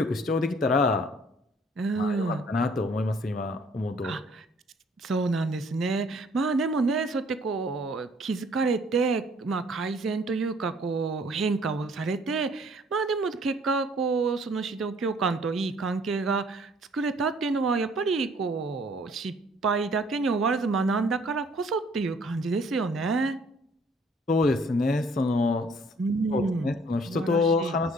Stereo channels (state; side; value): normal; both; correlation 0.59